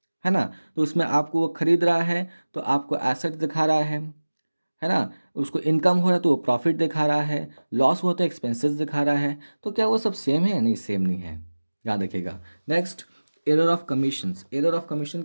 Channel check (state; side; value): inverted; both; correlation -1.00